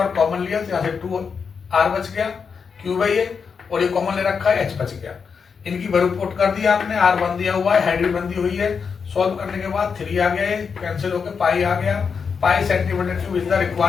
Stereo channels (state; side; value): quieter; right; 5.9 dB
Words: कॉमन लिया, तो यहाँ से 2 आर बच गया, क्यूब है ये, और ये कॉमन ले रखा है, एच बच गया। इनकी वैल्यू पुट कर दी आपने, आर 1 दिया हुआ है, हाइट भी 1 दी हुई है। सॉल्व करने के बाद 3 आ गया, ये कैंसिल होकर पाई आ गया। पाई centimetre cube is the